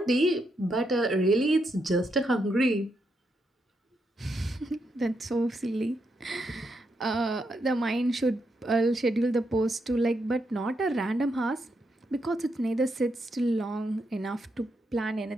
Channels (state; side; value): normal; both; correlation 0.81